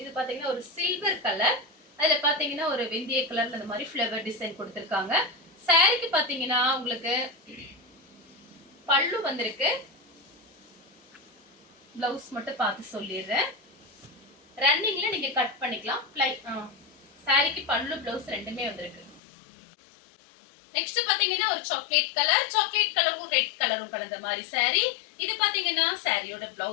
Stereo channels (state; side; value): drops out; right; at 19.2 s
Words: இது பாத்தீங்கன்னா ஒரு சில்வர் கலர். அதுல பாத்தீங்கன்னா ஒரு வெந்தய கலர்ல இந்த மாதிரி ஃப்ளவர் டிசைன் கொடுத்திருக்காங்க. சாரிக்கு பாத்தீங்கன்னா உங்களுக்கு பல்லு வந்திருக்கு. பிளவுஸ் மட்டும் பார்த்து சொல்லிடுறேன். ரன்னிங்ல நீங்க கட் பண்ணிக்கலாம். சாரிக்கு பல்லு பிளவுஸ் ரெண்டுமே வந்திருக்கு. நெக்ஸ்ட் பாத்தீங்கன்னா ஒரு சாக்லேட் கலரும் ரெட் கலரும் கலந்த மாதிரி saree. இது பாத்தீங்கன்னா சாரியோட